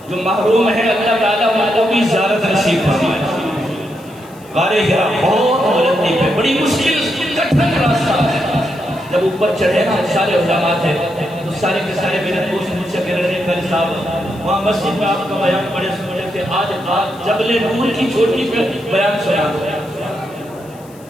جو محروم ہے اللہ تعالیٰ ان کو بھی زیارت نصیب فرمائے۔ غار ہرا بہت بلندی پہ، بڑی مشکل کٹھن راستہ ہے۔ جب اوپر چڑھے نا سارے علماء تھے تو سارے کے سارے میرے دوست مجھ سے کہہ رہے تھے قاری صاحب وہاں مسجد میں آپ کا بیان بڑے سننے تھے، آج جبل نور کی چھوٹی پہ بیان سنا دو۔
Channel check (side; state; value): left; noise; hiss, 26 dB below the sound